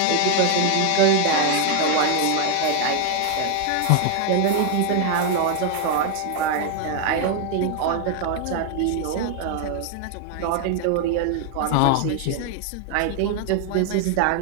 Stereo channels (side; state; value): both; different; correlation 0.00